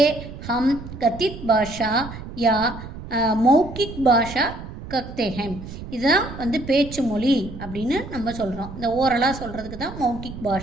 ஹம் கத்தித் பாஷா யா மௌக்கிக் பாஷா கத்தேகம். இதுதான் வந்து பேச்சு மொழி அப்படின்னு நம்ம சொல்கிறோம். இந்த ஓரலாக சொல்கிறதுக்கு தான் மௌக்கிக்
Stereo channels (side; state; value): right; noise; rumble, 12 dB below the sound